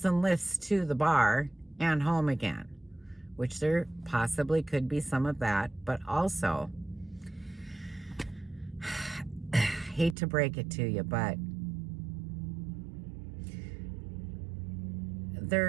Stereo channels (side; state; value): left; drops out; at 10.2 s